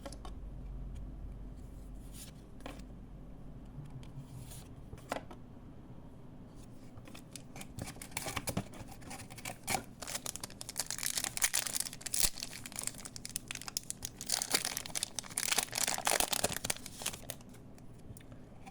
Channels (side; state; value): both; identical; correlation 1.00